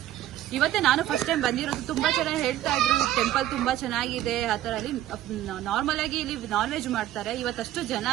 ಇವತ್ತೇ ನಾನು ಫಸ್ಟ್ ಟೈಮ್ ಬಂದಿರೋದು. ತುಂಬಾ ಚೆನ್ನಾಗಿ ಹೇಳ್ತಾ ಇದ್ರು ಟೆಂಪಲ್ ತುಂಬಾ ಚೆನ್ನಾಗಿದೆ ಆ ತರ. ಅಲ್ಲಿ ನಾರ್ಮಲ್ ಆಗಿ ಇಲ್ಲಿ ನಾನ್ ವೆಜ್ ಮಾಡ್ತಾರೆ. ಇವತ್ತಷ್ಟು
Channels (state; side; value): quieter; left; 13.2 dB